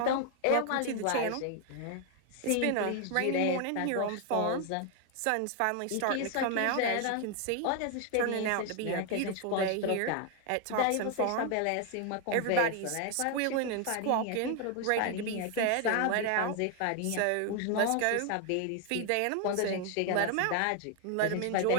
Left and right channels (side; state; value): both; different; correlation 0.01